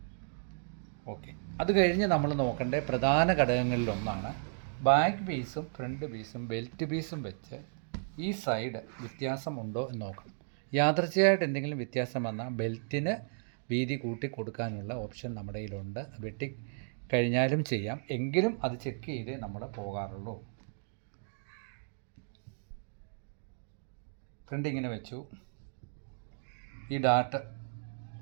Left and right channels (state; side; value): silent; left; digital silence